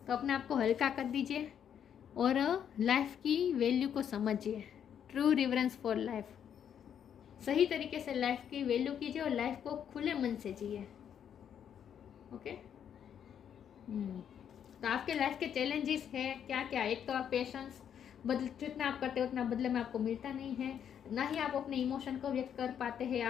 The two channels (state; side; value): quieter; right; 8.8 dB